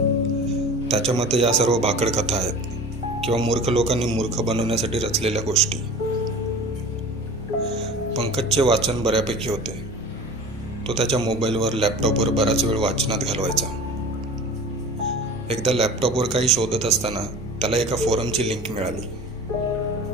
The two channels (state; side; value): normal; both; correlation 0.38